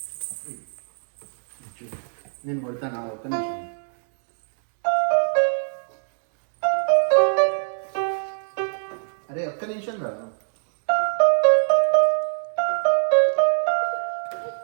నేను కొడతాను ఒక్క నిమిషం. అరే ఒక్క నిమిషం రా.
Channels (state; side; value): silent; left; digital silence